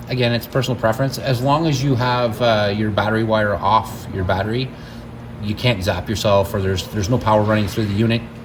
Again, it's personal preference. As long as you have your battery wire off your battery, you can't zap yourself, or there's no power running through the unit,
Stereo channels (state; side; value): identical; both; correlation 1.00